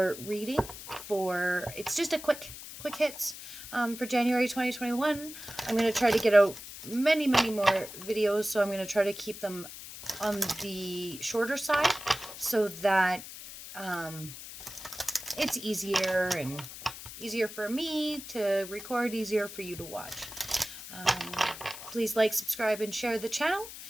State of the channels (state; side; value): noise; left; hiss, 12 dB below the sound